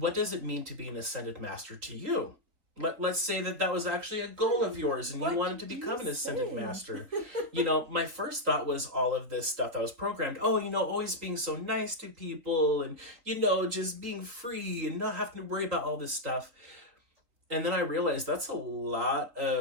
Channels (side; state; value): left; late; 3.7 ms